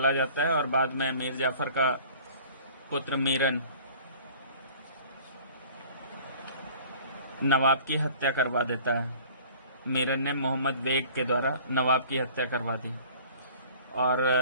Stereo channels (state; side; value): inverted; both; correlation -0.47